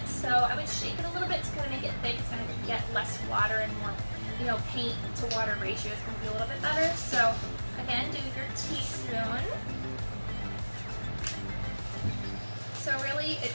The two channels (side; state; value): both; inverted; correlation -1.00